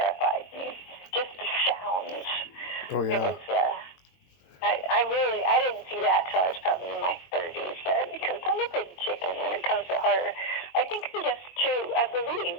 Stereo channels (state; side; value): late; right; 22 ms